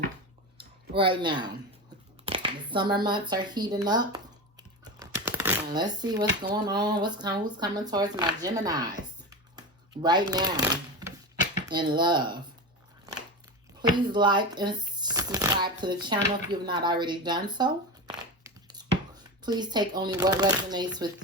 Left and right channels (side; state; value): both; normal; correlation 0.23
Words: right now. The summer months are heating up. And let's see what's going on. Who's coming towards my Geminis right now in love. Please like and subscribe to the channel if you've not already done so. Please take only what resonates